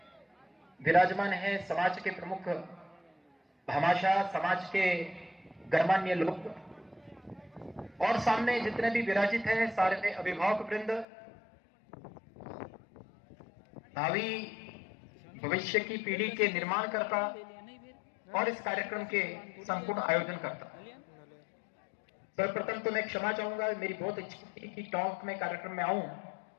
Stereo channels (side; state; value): right; drops out; at 11.1 s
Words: विराजमान हैं समाज के प्रमुख भामाशाह, समाज के गणमान्य लोग, और सामने जितने भी विराजित हैं सारे अभिभावक वृंद, भावी भविष्य की पीढ़ी के निर्माणकर्ता और इस कार्यक्रम के संपूर्ण आयोजन करता। सर्वप्रथम तो मैं क्षमा चाहूंगा, मेरी बहुत इच्छा थी कि टॉक में कार्यक्रम में आऊं,